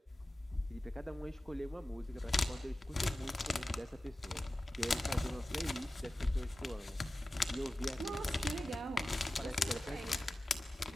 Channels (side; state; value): both; normal; correlation 0.95